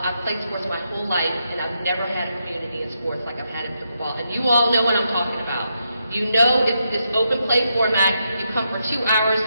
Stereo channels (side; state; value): both; inverted; correlation -0.82